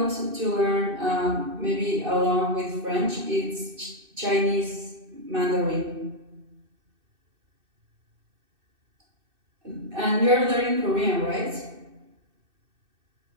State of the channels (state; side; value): late; left; 2.6 ms